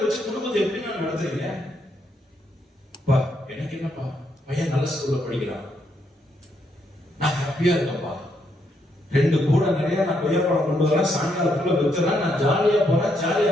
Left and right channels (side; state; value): both; normal; correlation 0.76